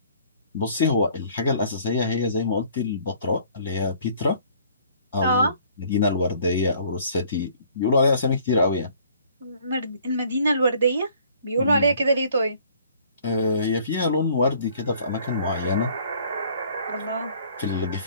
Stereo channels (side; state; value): both; inverted; correlation -0.57